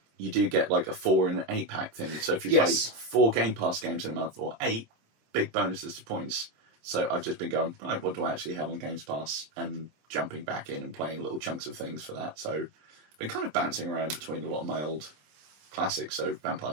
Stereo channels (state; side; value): late; left; 26 ms